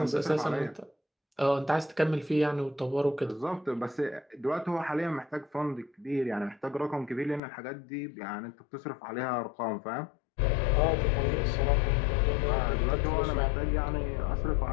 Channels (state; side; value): drops out; right; at 7.4 s